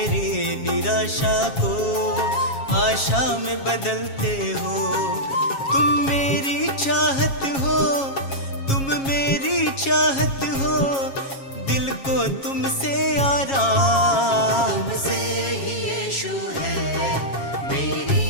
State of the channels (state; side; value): late; right; 7.3 ms